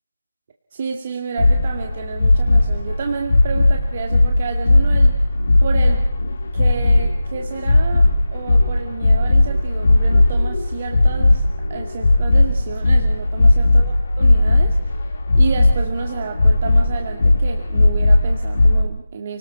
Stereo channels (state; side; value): inverted; both; correlation -0.96